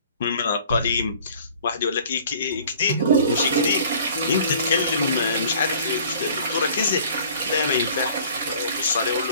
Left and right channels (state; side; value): inverted; both; correlation -0.51